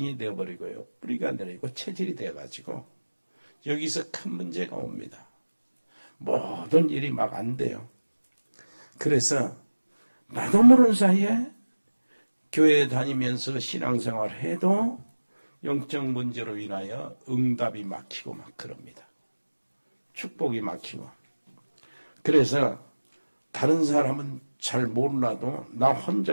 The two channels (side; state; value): both; inverted; correlation -1.00